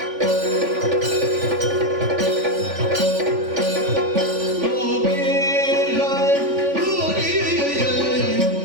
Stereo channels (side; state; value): left; late; 3.5 ms